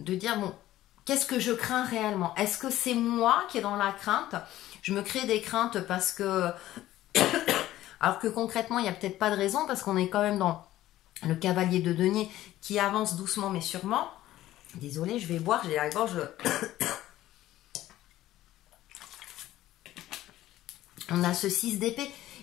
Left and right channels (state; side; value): quieter; right; 14.5 dB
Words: dire, bon, qu'est-ce que je crains réellement? Est-ce que c'est moi qui est dans la crainte? Je me crée des craintes parce que... Alors que concrètement, il n'y a peut-être pas de raison parce qu'on est quand même dans le cavalier de denier qui avance doucement mais sûrement. Désolée, je vais boire, j'ai la gorge... On a ce 6 d'épée.